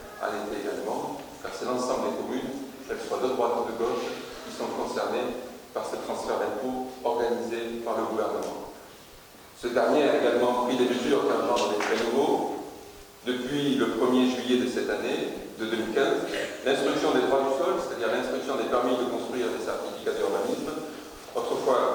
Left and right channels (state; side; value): identical; both; correlation 1.00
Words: à l'été également, car c'est l'ensemble des communes, qu'elles soient de droite ou de gauche, qui sont concernées par ce transfert d'impôts organisé par le gouvernement. Ce dernier a également pris des mesures qui engendrent des frais nouveaux. Depuis le 1er juillet de cette année, de 2015, l'instruction des droits du sol, c'est-à-dire l'instruction des permis de construire des certificats d'urbanisme,